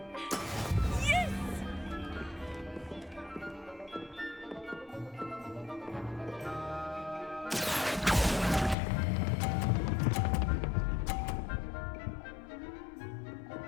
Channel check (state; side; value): drops out; right; at 8.8 s